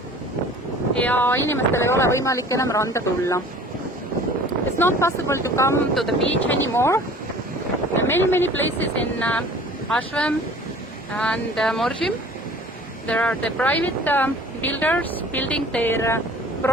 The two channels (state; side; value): normal; both; correlation 0.46